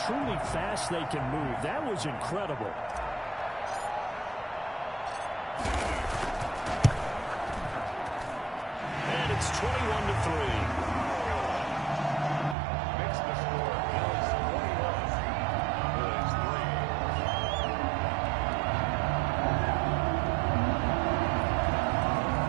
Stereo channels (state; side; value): drops out; left; at 12.6 s